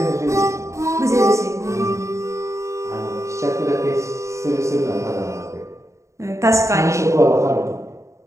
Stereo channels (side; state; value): left; late; 0.14 ms